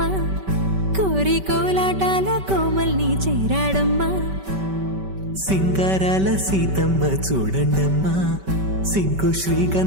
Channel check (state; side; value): late; left; 5.2 ms